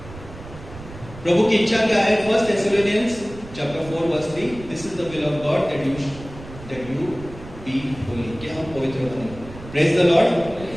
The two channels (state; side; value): noise; right; rumble, 16 dB below the sound